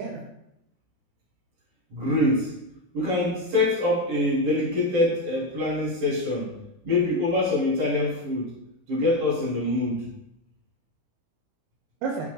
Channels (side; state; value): left; late; 18 ms